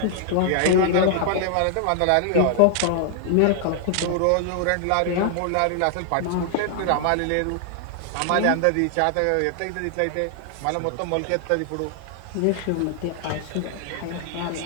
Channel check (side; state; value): both; different; correlation 0.00